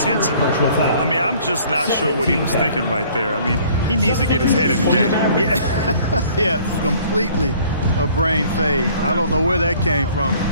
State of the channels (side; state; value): both; inverted; correlation -0.55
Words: Personal foul. I mean, I'm just not sure what he was thinking right there. I mean, he needs to get his head in the game. Yeah, yeah, completely a brain fade. I don't know where that came from.